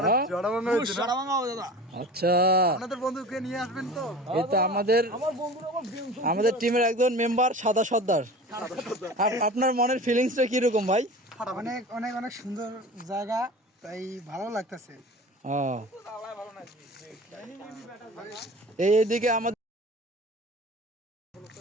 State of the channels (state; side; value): normal; both; correlation 0.37